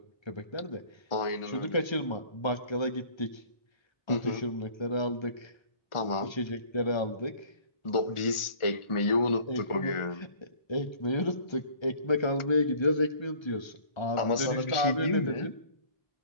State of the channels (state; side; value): late; right; 1.4 ms